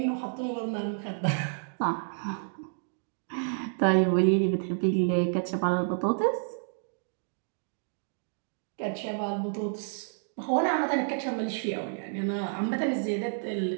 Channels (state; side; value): silent; left; digital silence